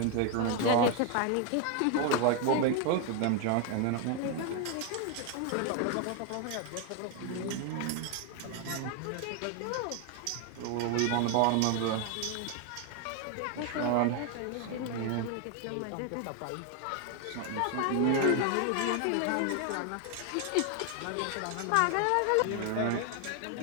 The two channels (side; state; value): both; different; correlation 0.01